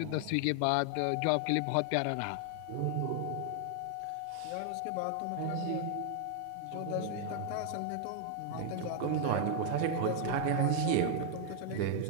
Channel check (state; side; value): different; both; correlation 0.00